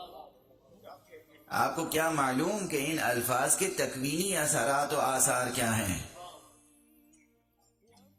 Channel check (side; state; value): both; identical; correlation 1.00